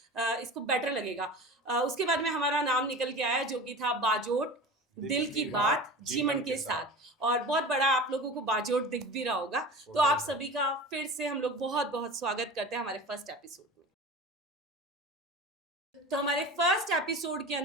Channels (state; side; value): normal; both; correlation 0.34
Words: इसको बेटर लगेगा। उसके बाद में हमारा नाम निकल के आया जो कि था बाजोट दिल की बात जीवन के साथ। और बहुत बड़ा आप लोगों को बाजोट दिख भी रहा होगा। तो आप सभी का फिर से हम लोग बहुत बहुत स्वागत करते हैं हमारे फर्स्ट एपिसोड में। तो हमारे फर्स्ट एपिसोड के